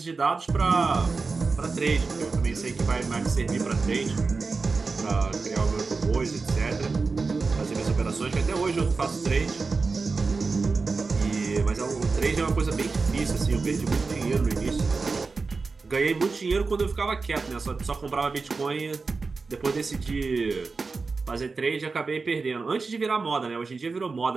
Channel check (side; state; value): left; quieter; 4.3 dB